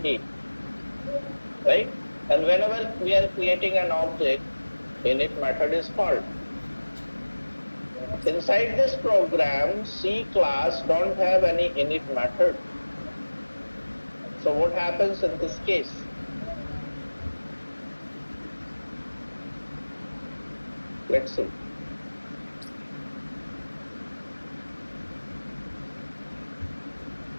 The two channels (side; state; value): both; inverted; correlation -1.00